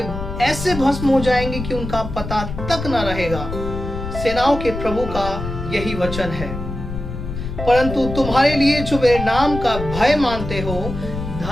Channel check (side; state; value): left; noise; rumble, 7 dB below the sound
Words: ऐसे भस्म हो जाएंगे कि उनका पता तक न रहेगा। सेनाओं के प्रभु का यही वचन है। परंतु तुम्हारे लिए जो मेरे नाम का भय मानते हो,